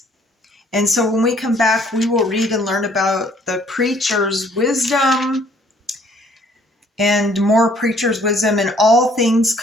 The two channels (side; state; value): both; normal; correlation 0.61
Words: And so when we come back, we will read and learn about the preacher's wisdom and more preacher's wisdom, and all things